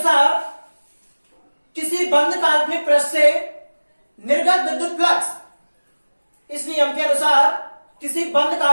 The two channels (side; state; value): both; inverted; correlation -1.00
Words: किसी बंद काल्पनिक पृष्ठ से निर्गत विद्युत फ्लक्स, इस नियम के अनुसार किसी बंद